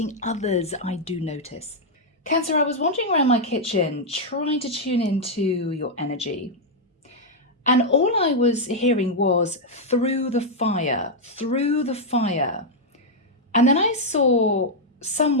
others, I do notice. Cancer, I was wandering around my kitchen trying to tune into your energy. And all I was hearing was through the fire, through the fire. And then I saw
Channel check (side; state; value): both; normal; correlation -0.02